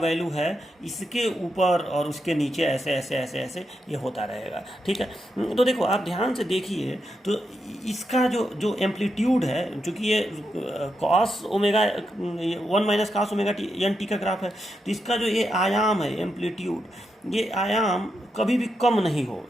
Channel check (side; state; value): both; normal; correlation 0.84